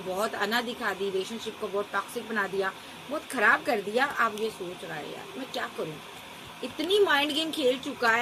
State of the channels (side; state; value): both; identical; correlation 1.00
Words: अना दिखा दी, रिलेशनशिप को बहुत टॉक्सिक बना दिया, बहुत खराब कर दिया। आप ये सोच रहा है यार मैं क्या करूं, इतनी माइंड गेम खेल चुका